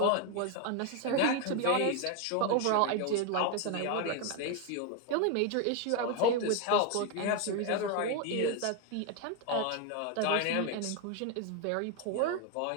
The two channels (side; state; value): both; different; correlation 0.01